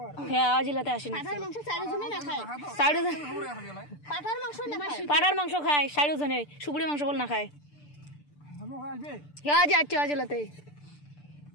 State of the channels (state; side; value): late; right; 6.8 ms